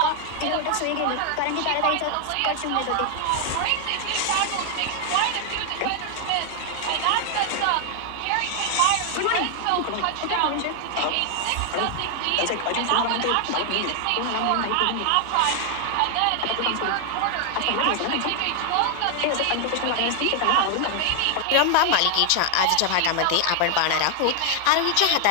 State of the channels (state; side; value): different; both; correlation 0.00